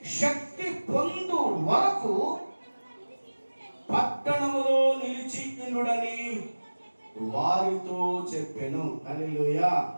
శక్తి పొందు వరకు పట్టణములో నిలిచి ఉండుడని వారితో చెప్పెను. హల్లెలూయా.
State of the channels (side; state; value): both; inverted; correlation -1.00